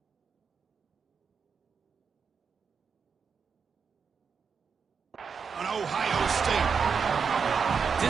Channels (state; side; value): quieter; left; 6.0 dB